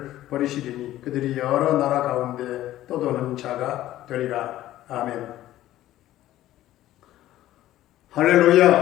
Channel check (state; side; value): quieter; right; 14.2 dB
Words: 버리시리니 그들이 여러 나라 가운데 떠도는 자가 되리라. 아멘.